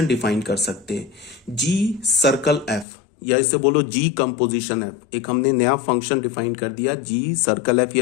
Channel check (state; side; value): drops out; right; at 2.9 s